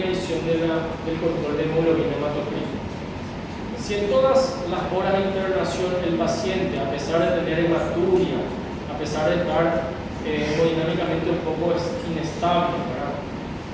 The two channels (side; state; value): both; identical; correlation 1.00